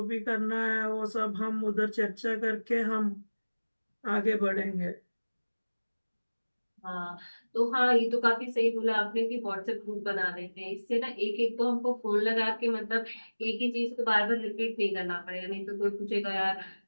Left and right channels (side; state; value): both; inverted; correlation -1.00